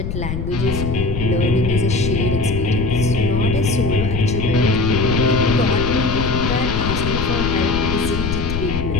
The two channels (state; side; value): noise; left; rumble, 3 dB below the sound